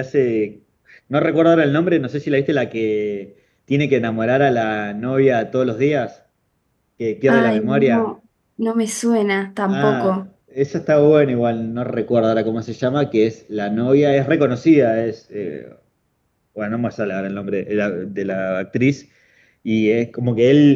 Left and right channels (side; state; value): both; identical; correlation 1.00